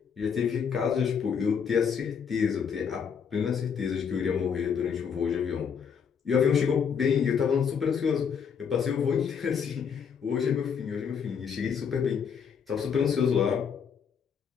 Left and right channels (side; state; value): right; quieter; 6.9 dB